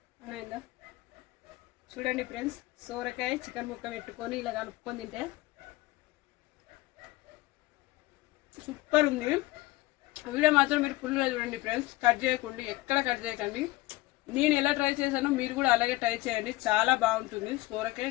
చూడండి ఫ్రెండ్స్, సోరకాయ చికెన్ ముక్క పెట్టుకొని ఇలా కలుపుకొని తింటే సూపర్ ఉంది. వీడియో మాత్రం మీరు ఫుల్గా చూడండి ఫ్రెండ్స్, ఎక్కడ కట్ చేయకండి. నేను ఎలా ట్రై చేశానో మీరు కూడా అలాగే ట్రై చేయండి, చాలా బాగుంటుంది సోరకాయ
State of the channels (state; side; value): quieter; right; 19.6 dB